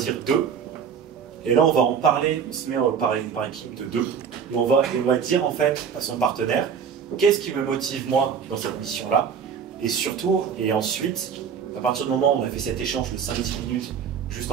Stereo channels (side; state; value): left; quieter; 7.0 dB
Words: 2. Et là, on va en parler, on se met par équipe de 2. Et on va dire en fait à son partenaire, qu'est-ce qui me motive moi dans cette mission-là, et surtout, et ensuite, à partir du moment où on a fait cet échange de 5-10 minutes, juste